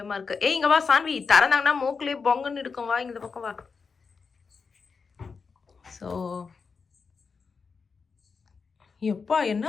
இருக்கு. இங்க வா சான்வி, திறந்தாங்கன்னா மூக்குலேயே பொங்கன்னு இருக்கும். வா இந்த பக்கம் வா. ஸோ எப்பா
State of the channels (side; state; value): right; quieter; 5.2 dB